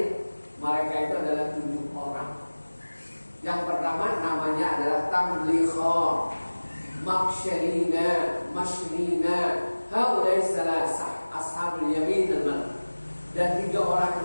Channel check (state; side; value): inverted; both; correlation -1.00